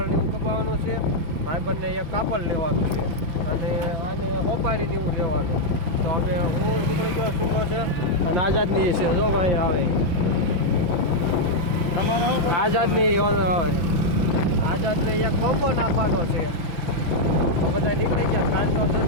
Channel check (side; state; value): left; late; 5.9 ms